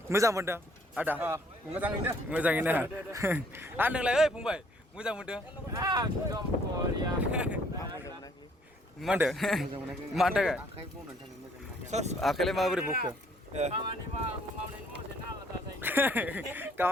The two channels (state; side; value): normal; both; correlation 0.63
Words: मोजां मोनदों आदा मोजाङैनो आरो नोंलाय ओइ फंबाय मोजां मोनदों मा होनदों मानि थाखाय आखाइलाय माबोरै बखो